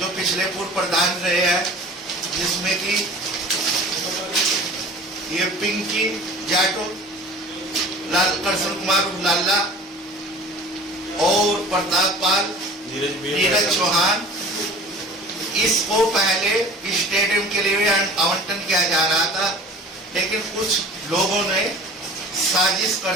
पिछले पूर्व प्रधान रहे हैं, जिसमें कि ये पिंकी जाटो, कृष्ण कुमार लाला और प्रताप पाल, नीरज चौहान, इसको पहले स्टेडियम के लिए आवंटन किया जा रहा था, लेकिन कुछ लोगों ने साजिश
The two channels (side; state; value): both; normal; correlation 0.42